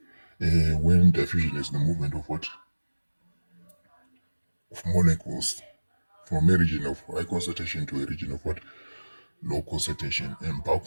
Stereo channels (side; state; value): both; inverted; correlation -1.00